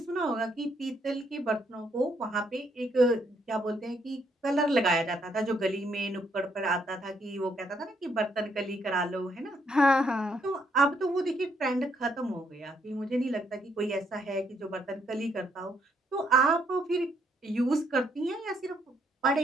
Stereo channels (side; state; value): both; normal; correlation 0.72